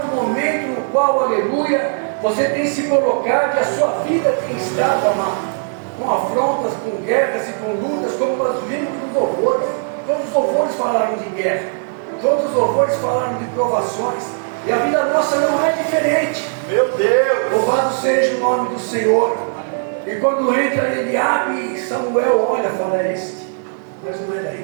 o momento no qual, aleluia, você tem se colocado e a sua vida tem estado, amado, com afrontas, com guerras e com lutas, como nós vimos nos louvores. Todos os louvores falaram de guerra, todos os louvores falaram de provações, e a vida nossa não é diferente. Meu Deus! Louvado seja o nome do Senhor. E quando entra Eliabe, Samuel olha e fala: este, mas não era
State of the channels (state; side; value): silent; left; 67 dB below the other